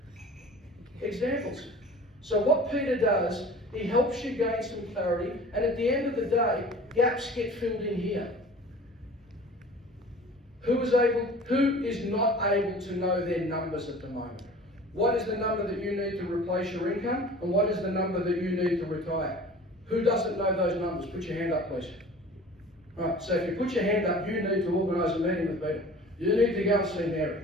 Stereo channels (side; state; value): both; normal; correlation 0.43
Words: examples. So what Peter does, he helps you gain some clarity, and at the end of the day, gaps get filled in here. Who is not able to know their numbers at the moment? What is the number that you need to replace your income, and what is the number that you need to retire? Who doesn't know those numbers? Put your hand up, please. Right, so if you put your hand up, you need to organise a meeting with Peter. You need to go and see